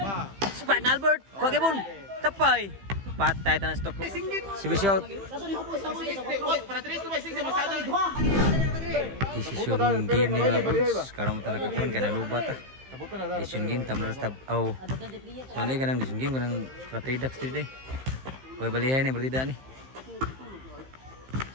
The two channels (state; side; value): late; left; 15 ms